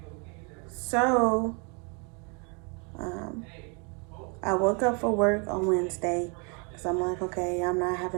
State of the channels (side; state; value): left; quieter; 34.4 dB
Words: So, I woke up for work on Wednesday, because I'm like, okay, I'm not